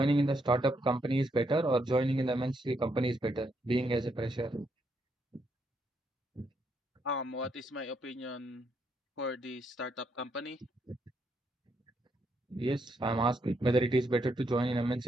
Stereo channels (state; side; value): normal; both; correlation 0.77